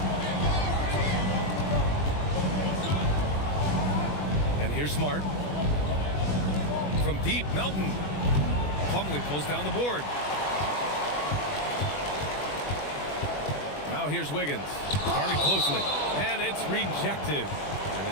And here's Smart. From deep, Melton. Plumlee pulls down the board. Now here's Wiggins. Guarding closely. And it's rejected. And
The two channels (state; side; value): late; right; 21 ms